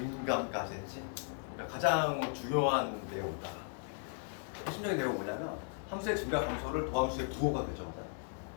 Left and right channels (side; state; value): right; silent; 53 dB below the other